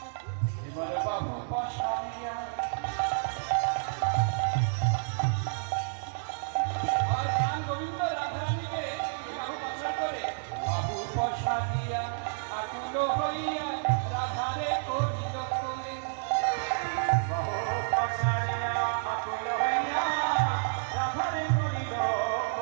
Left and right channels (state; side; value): silent; left; digital silence